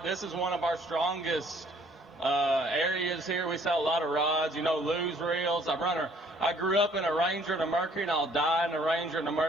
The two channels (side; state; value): both; normal; correlation 0.60